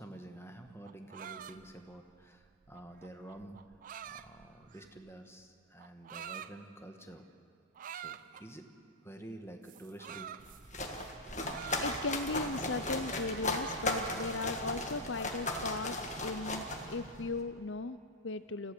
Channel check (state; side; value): normal; both; correlation -0.04